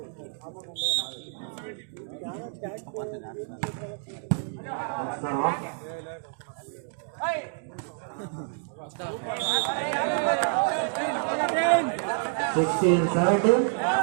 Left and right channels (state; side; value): silent; left; 59 dB below the other